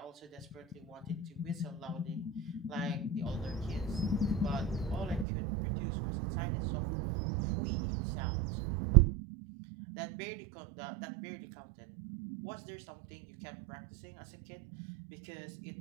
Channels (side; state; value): left; drops out; at 5.2 s